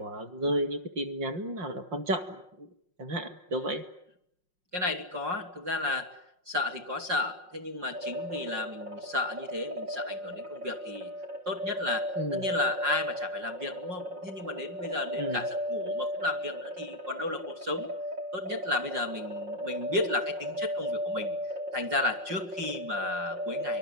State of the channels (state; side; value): late; left; 5.5 ms